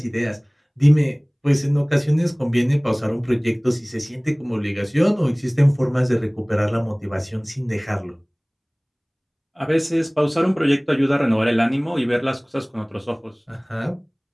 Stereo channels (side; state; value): both; identical; correlation 1.00